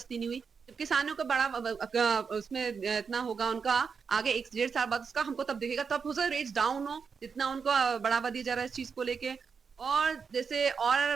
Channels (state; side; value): quieter; left; 5.8 dB